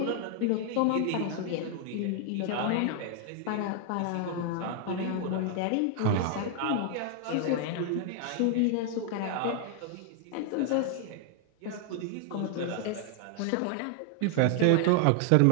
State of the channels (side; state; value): both; different; correlation 0.00